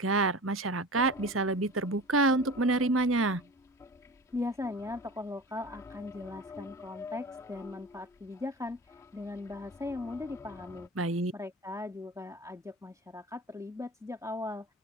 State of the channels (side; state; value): both; normal; correlation 0.35